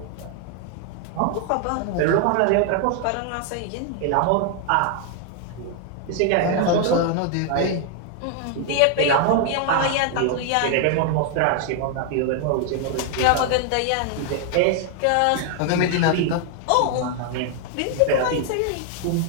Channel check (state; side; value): different; both; correlation 0.00